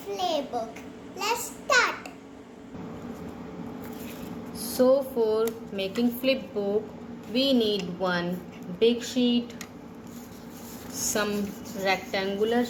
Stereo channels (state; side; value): identical; both; correlation 1.00